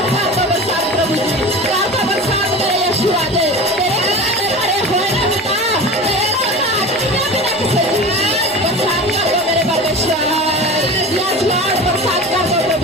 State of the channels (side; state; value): both; normal; correlation 0.32